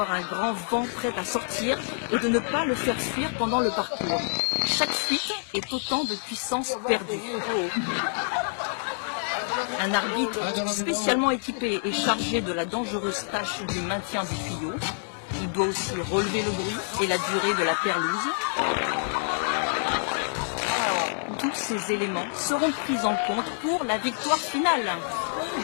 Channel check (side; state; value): right; silent; digital silence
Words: un grand vent prêt à sortir et de ne pas le faire fuir pendant le parcours. Chaque fuite est autant de puissance perdue. Un arbitre spécialement équipé est chargé de la dangereuse tâche du maintien du tuyau. Il doit aussi relever le bruit et la durée de la perlouse. Tous ces éléments seront pris en compte pour la victoire finale.